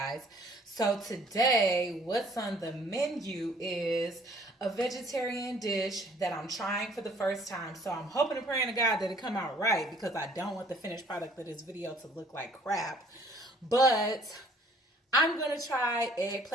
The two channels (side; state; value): both; normal; correlation 0.58